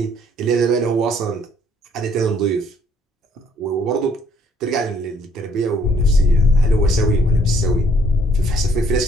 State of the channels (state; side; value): normal; both; correlation 0.64